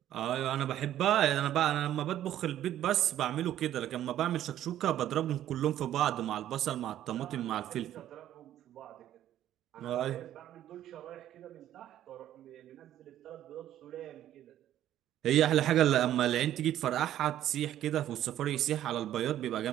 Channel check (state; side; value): quieter; left; 12.1 dB